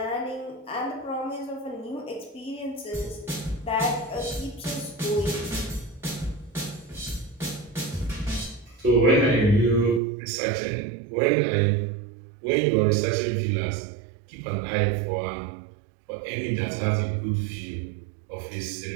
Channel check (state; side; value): drops out; left; at 10.0 s